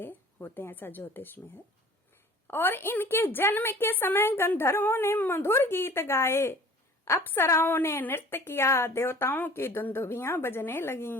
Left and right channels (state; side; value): normal; both; correlation 0.46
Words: होते हैं, ऐसा ज्योतिष में है। और इनके जन्म के समय गंधर्वों ने मधुर गीत गाए, अप्सराओं ने नृत्य किया, देवताओं की दुंदुभियां बजने